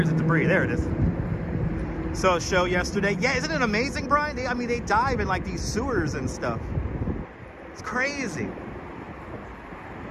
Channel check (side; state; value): both; identical; correlation 1.00